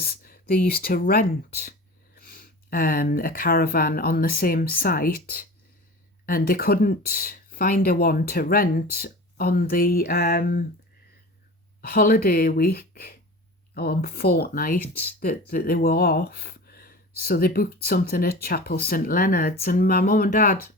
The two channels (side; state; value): both; normal; correlation 0.35